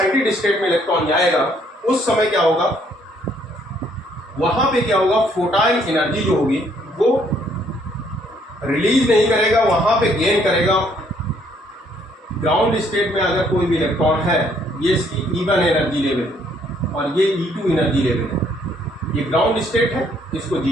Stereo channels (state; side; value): normal; both; correlation 0.66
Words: स्टेट में इलेक्ट्रॉन जाएगा, उस समय क्या होगा, वहां पे क्या होगा, फोटॉन एनर्जी जो होगी वो रिलीज नहीं करेगा, वहां पे गेन करेगा। ग्राउंड स्टेट में अगर कोई भी इलेक्ट्रॉन है, ये इसकी E1 एनर्जी लेवल और ये E2 एनर्जी लेवल है, ये ग्राउंड स्टेट है, इसको